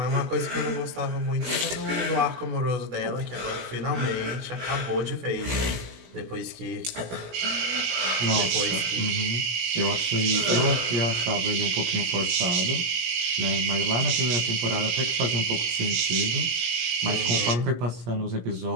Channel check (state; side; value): late; left; 17 ms